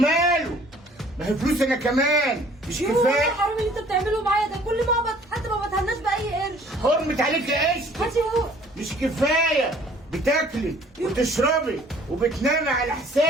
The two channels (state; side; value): normal; both; correlation 0.55